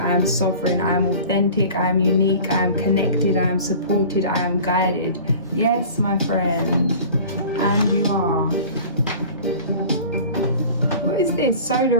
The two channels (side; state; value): both; inverted; correlation -0.41